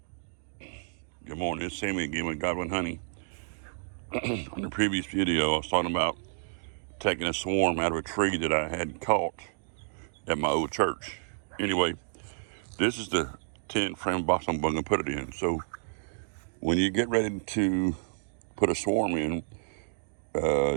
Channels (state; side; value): silent; left; digital silence